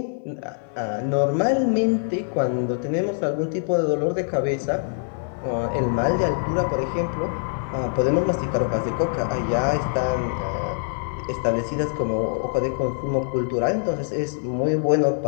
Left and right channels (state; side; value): silent; right; 56 dB below the other